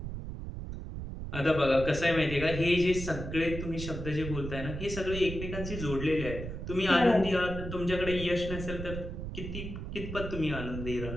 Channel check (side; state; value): right; noise; rumble, 7 dB below the sound